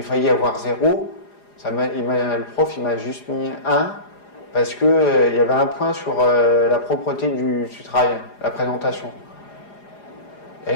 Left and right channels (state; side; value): late; right; 4.9 ms